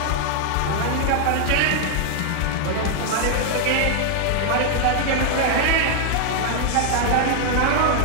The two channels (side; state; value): both; different; correlation 0.00